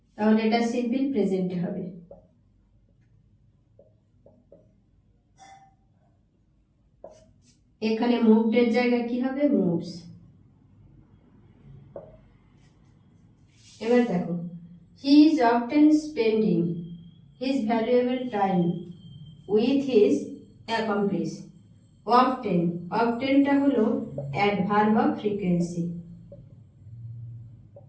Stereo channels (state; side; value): identical; both; correlation 1.00